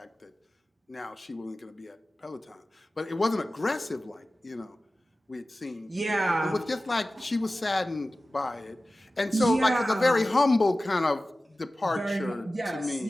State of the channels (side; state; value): both; normal; correlation 0.96